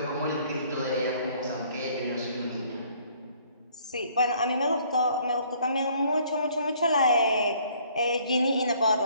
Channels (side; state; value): both; inverted; correlation -0.60